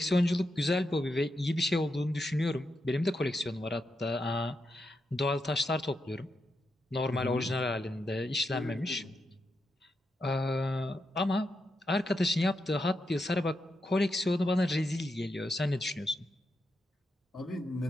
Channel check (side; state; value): both; normal; correlation 0.85